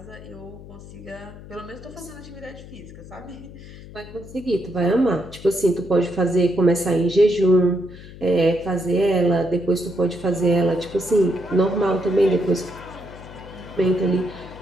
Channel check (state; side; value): noise; left; hum, 16 dB below the sound